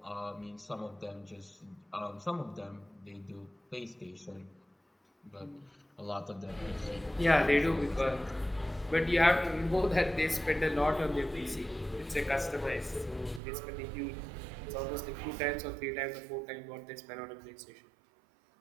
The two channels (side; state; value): left; drops out; at 13.4 s